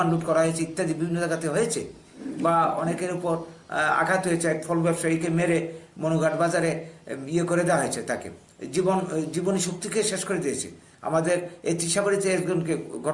লুট করা হয়েছে ইত্যাদি বিভিন্ন জায়গাতে হয়েছে। বা অনেকের উপর আঘাত হয়েছে, এক ফল ব্যবসায়ীকে মেরে মনুঘাট বাজারে ইয়ে করে দেওয়া হয়েছে, তাকে জীবনী শক্তিকে শেষ করে দিয়েছে। আমাদের এই ত্রিশাবাড়িতে একজনকে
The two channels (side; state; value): both; identical; correlation 1.00